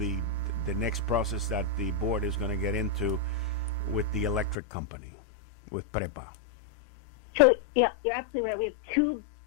next process that the board is going to get into with the electric company, with PREPA? So yeah, you're absolutely right. We have two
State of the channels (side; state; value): right; drops out; at 4.5 s